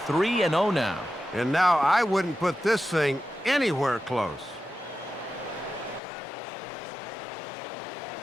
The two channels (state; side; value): drops out; right; at 6.0 s